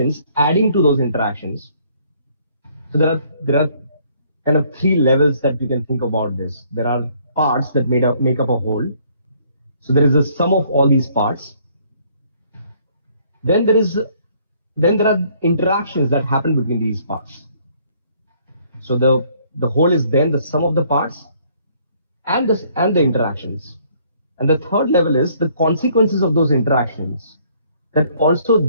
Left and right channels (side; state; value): both; inverted; correlation -0.63